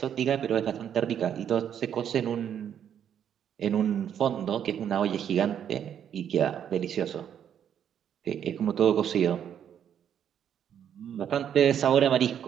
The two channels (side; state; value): left; quieter; 9.1 dB